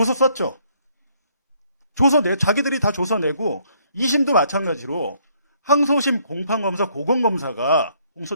썼죠. 자기들이 다 조서 내고 2심도 마찬가지로 항소심 공판검사 고검검사가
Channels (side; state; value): both; inverted; correlation -0.67